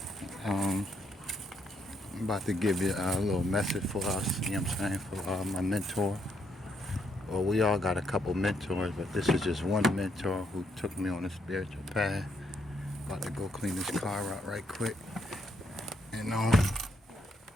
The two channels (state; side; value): normal; both; correlation 0.74